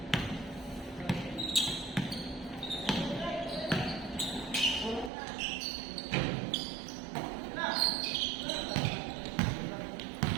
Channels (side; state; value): left; drops out; at 5.1 s